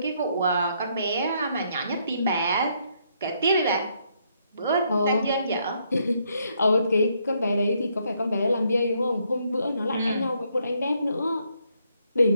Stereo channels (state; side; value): inverted; both; correlation -0.73